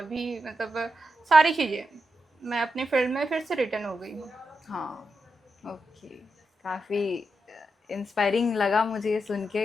भी मतलब सारी चीज़ें, मैं अपने फील्ड में फिर से रिटर्न हो गई हूँ। हाँ, ओके। काफ़ी इंस्पायरिंग लगा मुझे ये सुन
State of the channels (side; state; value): both; normal; correlation 0.86